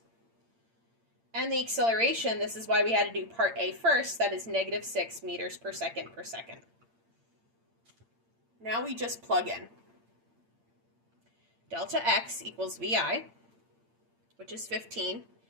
And the acceleration, this is why we had to do part A first, that is -6 meters per second. Now we just plug in. Delta x equals VI, which is 15,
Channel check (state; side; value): late; left; 8.8 ms